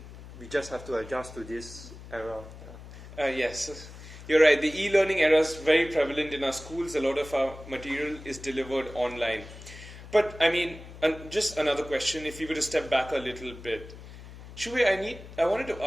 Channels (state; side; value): noise; left; hum, 15 dB below the sound